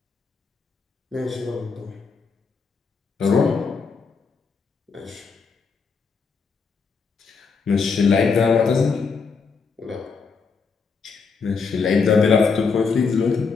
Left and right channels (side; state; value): right; quieter; 5.1 dB